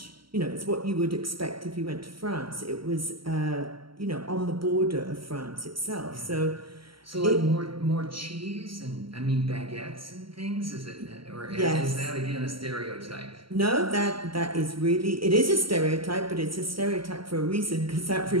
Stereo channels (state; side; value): late; left; 0.74 ms